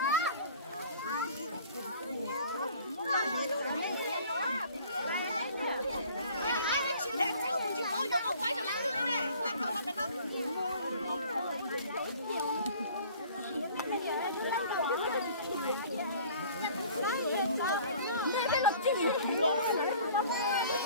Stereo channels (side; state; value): both; inverted; correlation -0.50